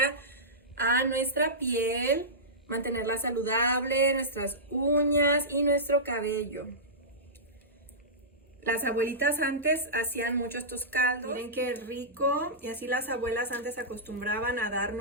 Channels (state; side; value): normal; both; correlation -0.16